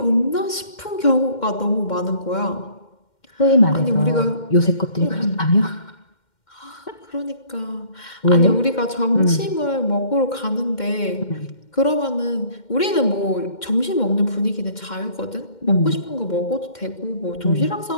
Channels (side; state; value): right; late; 2.1 ms